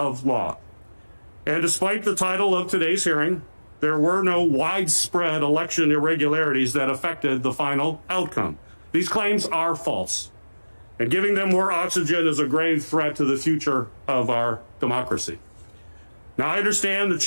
law. And despite the title of today's hearing, there were no widespread election irregularities that affected the final outcome. These claims are false, and giving them more oxygen is a grave threat to the future of our democracy. Now, I understand the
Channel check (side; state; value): both; inverted; correlation -1.00